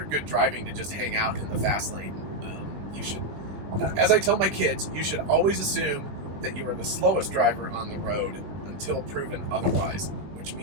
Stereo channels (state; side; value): late; left; 20 ms